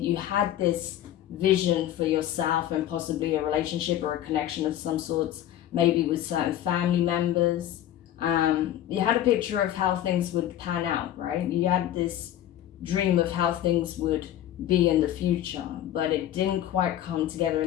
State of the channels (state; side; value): quieter; right; 12.1 dB